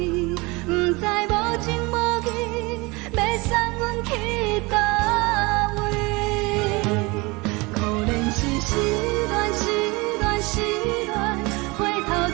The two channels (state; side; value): quieter; left; 25.1 dB